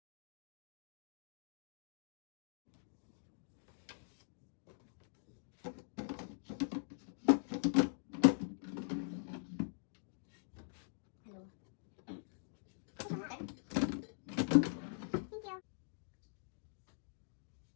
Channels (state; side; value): silent; right; digital silence